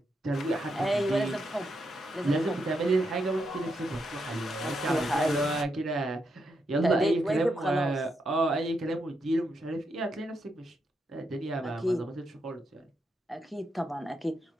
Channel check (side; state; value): both; normal; correlation 0.82